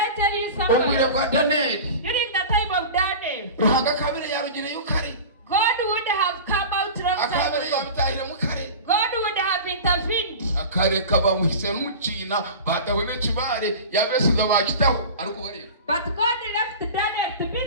tell you something? During the time of Daniel, God would have come out long time ago. God would have intervened. kareka bamuhise n'umucina batawe n'ikibare yabesiga bakitaho ariko bareba. But God left Daniel to be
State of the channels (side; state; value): both; inverted; correlation -0.33